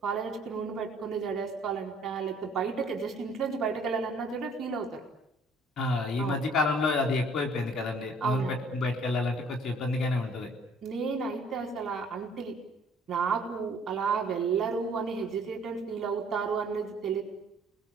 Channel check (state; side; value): normal; both; correlation 0.57